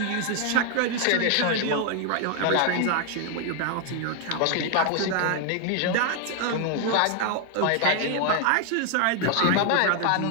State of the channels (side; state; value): both; different; correlation 0.01